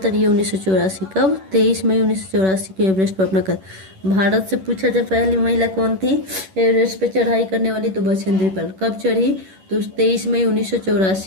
ये 1984। कब, 23 मई 1984 को एवरेस्ट पर अपना कदम। भारत से पूछा जाए पहली महिला कौन थी एवरेस्ट पर चढ़ाई करने वाली, तो बछेंद्री पाल। कब चढ़ी, तो 23 मई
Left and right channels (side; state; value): left; late; 11 ms